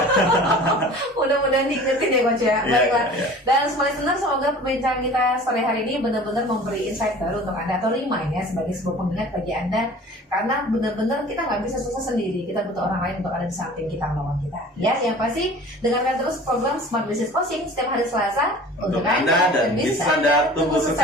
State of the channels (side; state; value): both; normal; correlation 0.43